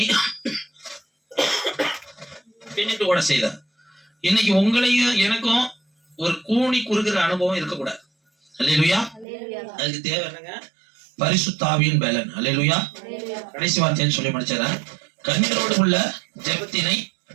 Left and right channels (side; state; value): left; drops out; at 9.2 s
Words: பின்னிட்டு ஓட செய்தார். இன்னைக்கு உங்களையும் எனக்கும் ஒரு கூனி குறுகிற அனுபவம் இருக்கக்கூடாது. அல்லேலூயா. அதுக்கு தேவை என்னங்க? பரிசுத்த ஆவியின் பலன். அல்லேலூயா. கடைசி வார்த்தைன்னு சொல்லி முடிச்சார, கண்ணீரோடு உள்ள ஜெபத்தினை